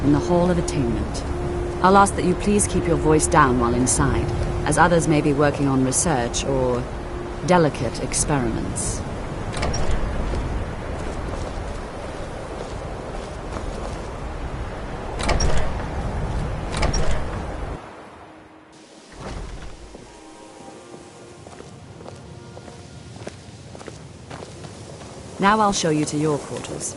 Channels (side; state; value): both; identical; correlation 1.00